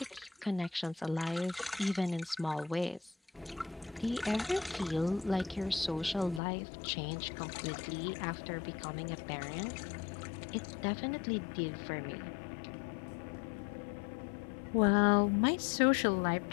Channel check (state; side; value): drops out; right; at 6.4 s